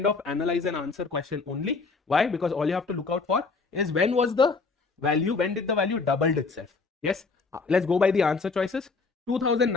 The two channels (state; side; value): quieter; right; 4.3 dB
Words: of analyze and answer question only. Why? Because all you have to look out for is when was the value, when did the value doubled itself? Yes. Let's go by the answer choices.